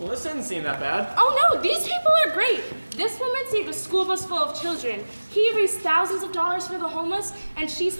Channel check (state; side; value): inverted; both; correlation -1.00